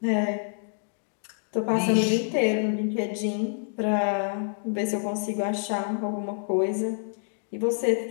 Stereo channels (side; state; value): right; silent; digital silence